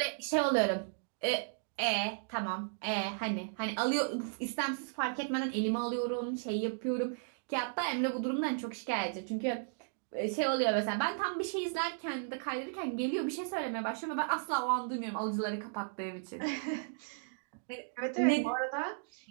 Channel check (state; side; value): silent; left; digital silence